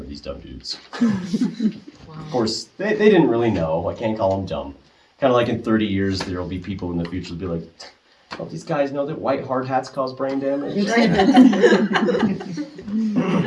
these dumb dudes. Of course, they didn't really know. I can't call them dumb. Kind of like in 30 years, there will be people in the future who'll be like, don't these guys know that white hard hats cause brain damage?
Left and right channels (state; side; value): identical; both; correlation 1.00